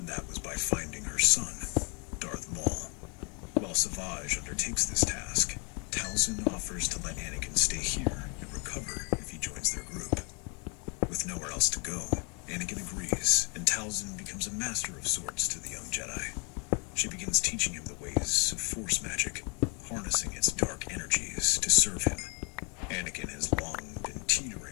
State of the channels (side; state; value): right; quieter; 35.1 dB